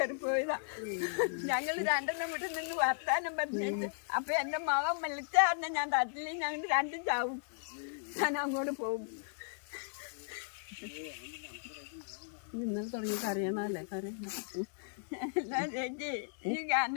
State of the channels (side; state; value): right; silent; digital silence